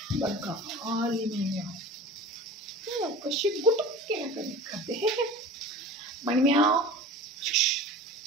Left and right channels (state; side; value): normal; both; correlation 0.38